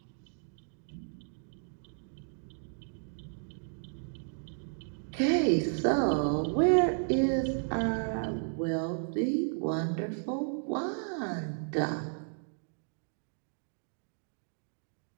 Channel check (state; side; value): silent; left; digital silence